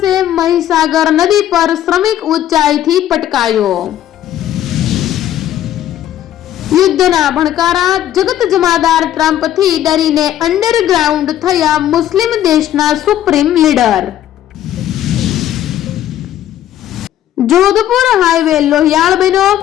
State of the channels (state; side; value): quieter; right; 11.9 dB